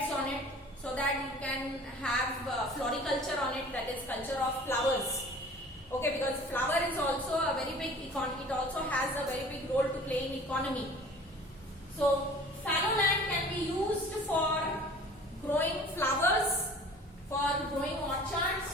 on it so that you can have floriculture on it, that is culture of flowers. Okay, because flower is also a very big economy. It also has a very big role to play in economy. So fallow land can be used for growing flowers, for growing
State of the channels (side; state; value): both; normal; correlation 0.46